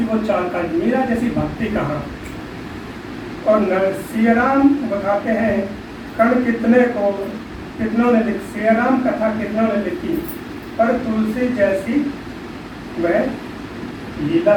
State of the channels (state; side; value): identical; both; correlation 1.00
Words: वो चाल का, मेरा जैसी भक्ति कहाँ। और सियाराम बताते हैं, कण कितने को कितनों ने लिखी, सियाराम कथा कितनों ने लिखी, पर तुलसी जैसी वह लीला